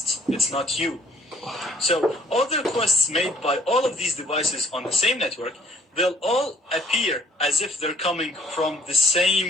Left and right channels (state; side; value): normal; both; correlation 0.60